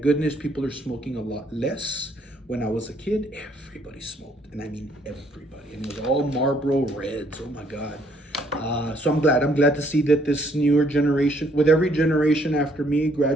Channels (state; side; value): normal; both; correlation 0.67